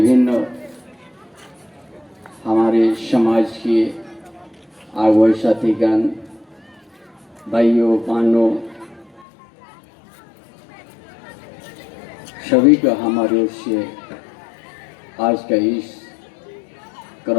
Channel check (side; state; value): right; drops out; at 9.2 s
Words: हमारे समाज के आगुए साथीगण भाइयों बहनों सभी का हमारे ओर से आज का इस